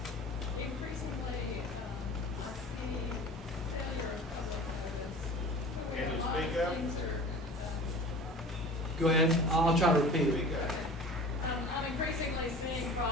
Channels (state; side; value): normal; both; correlation 0.39